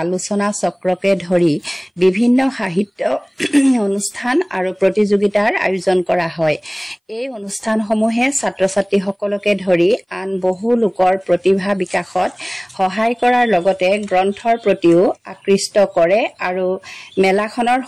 আলোচনা চক্ৰকে ধৰি বিভিন্ন সাহিত্য অনুষ্ঠান আৰু প্ৰতিযোগিতাৰ আয়োজন কৰা হয়। এই অনুষ্ঠানসমূহে ছাত্ৰ ছাত্ৰীসকলকে ধৰি আন বহু লোকৰ প্ৰতিভা বিকাশত সহায় কৰাৰ লগতে গ্ৰন্থৰ প্ৰতিও আকৃষ্ট কৰে আৰু মেলাখনৰ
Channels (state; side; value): identical; both; correlation 1.00